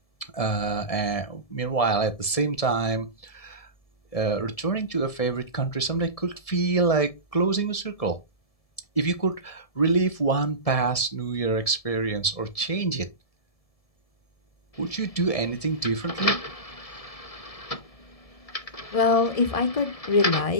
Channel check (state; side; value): late; right; 1.7 ms